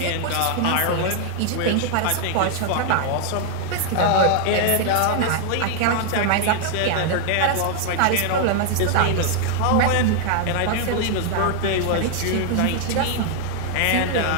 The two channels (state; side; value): different; both; correlation 0.00